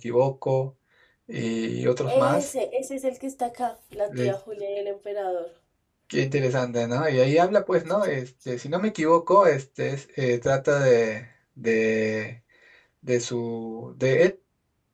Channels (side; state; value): both; identical; correlation 1.00